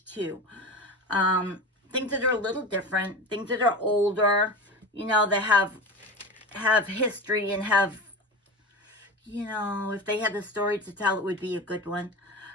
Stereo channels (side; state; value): both; normal; correlation 0.28